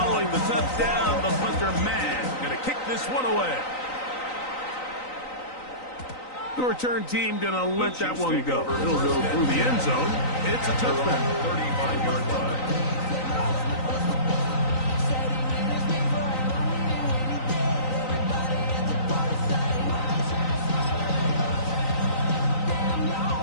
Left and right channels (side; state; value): right; late; 3.9 ms